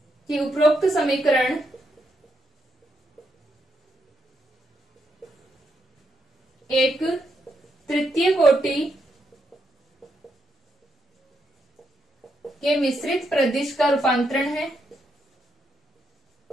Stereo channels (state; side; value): normal; both; correlation 0.80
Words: कि उपरोक्त समीकरण एक तृतीय कोटि के मिश्रित प्रदिश का रूपांतरण है।